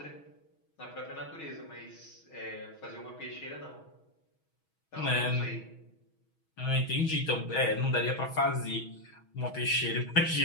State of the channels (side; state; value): right; late; 6.3 ms